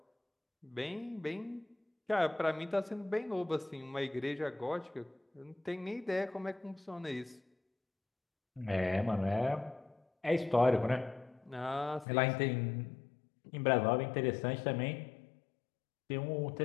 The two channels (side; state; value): right; drops out; at 12.1 s